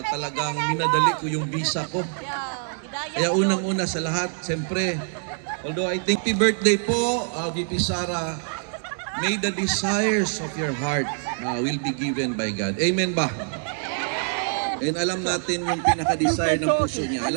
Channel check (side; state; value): left; silent; 57 dB below the other